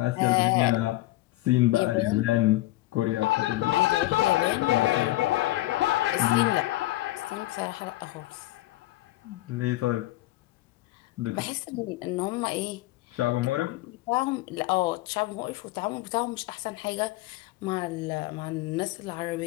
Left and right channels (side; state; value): right; quieter; 17.6 dB